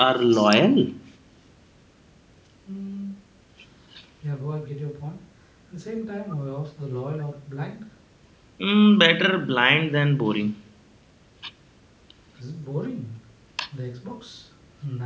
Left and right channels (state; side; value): identical; both; correlation 1.00